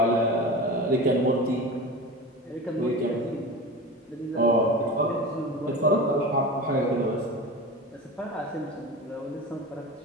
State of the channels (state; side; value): normal; both; correlation 0.30